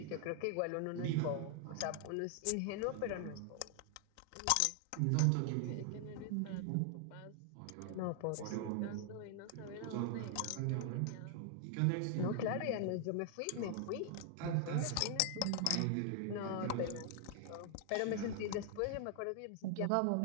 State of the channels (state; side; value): different; both; correlation 0.00